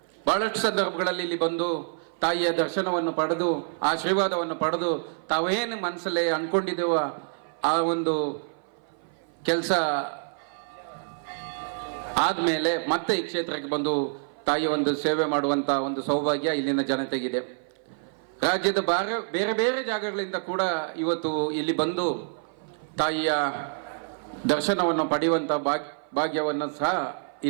ಬಹಳಷ್ಟು ಸಂದರ್ಭಗಳಲ್ಲಿ ಇಲ್ಲಿ ಬಂದು ತಾಯಿಯ ದರ್ಶನವನ್ನು ಪಡೆದು ಆಶೀರ್ವಾದವನ್ನು ಪಡೆದು ತಾವೇನು ಮನಸ್ಸಲ್ಲೇ ಅಂದ್ಕೊಂಡಿದ್ದೇವ ಆ ಒಂದು ಕೆಲಸ ಆದಮೇಲೆ ಮತ್ತೆ ಈ ಕ್ಷೇತ್ರಕ್ಕೆ ಬಂದು ತಾಯಿಯ ಒಂದು ಸೇವೆ ಮಾಡುವಂಥ ಒಂದು ಸೌಭಾಗ್ಯ ಇಲ್ಲಿನ ಜನತೆಗಿದೆ. ರಾಜ್ಯದ ಬೇರೆ ಬೇರೆ ಜಾಗಗಳಿಂದ ಕೂಡ ಇವತ್ತು ಇಲ್ಲಿ ಬಂದು ತಾಯಿಯ ದರ್ಶನವನ್ನು ಪಡೆಯುವಂಥ ಭಾಗ್ಯವನ್ನು ಸಹ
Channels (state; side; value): silent; left; 56 dB below the other